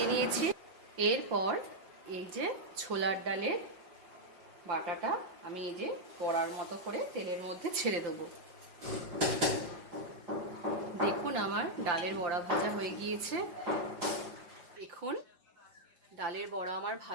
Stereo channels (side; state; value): left; late; 5.3 ms